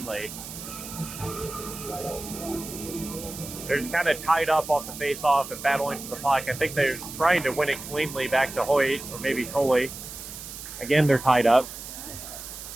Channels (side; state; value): right; noise; hiss, 11 dB below the sound